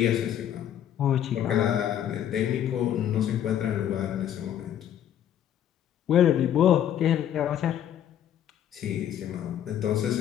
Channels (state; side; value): quieter; right; 10.3 dB